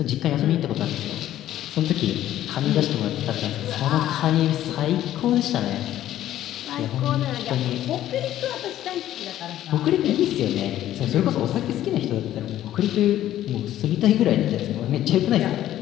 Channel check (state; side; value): quieter; right; 12.8 dB